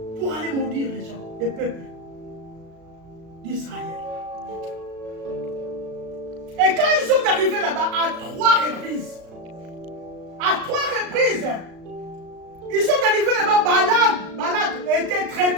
Pour aller maudire les gens, les peuples d'Israël. Et quand ils sont arrivés là-bas, à 3 reprises, ils sont arrivés là-bas, Balak était très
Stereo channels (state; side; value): late; left; 36 ms